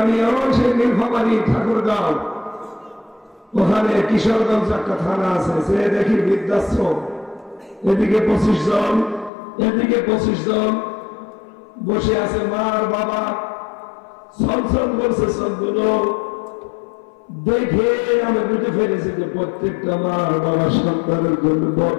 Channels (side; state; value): right; drops out; at 9.3 s